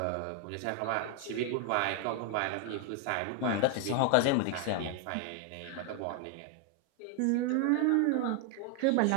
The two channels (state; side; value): different; both; correlation 0.01